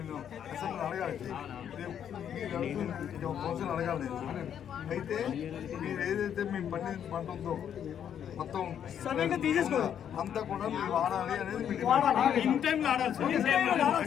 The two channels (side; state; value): right; quieter; 9.1 dB